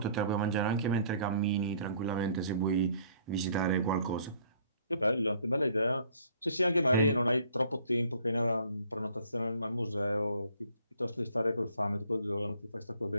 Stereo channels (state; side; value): inverted; both; correlation -0.58